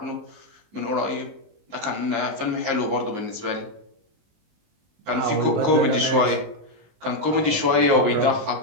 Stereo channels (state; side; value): late; left; 19 ms